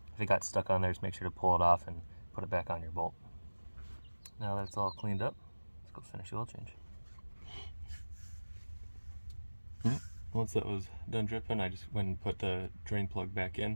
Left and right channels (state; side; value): inverted; both; correlation -1.00